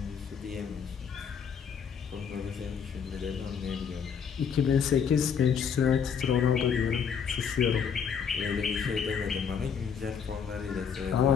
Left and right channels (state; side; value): quieter; right; 7.0 dB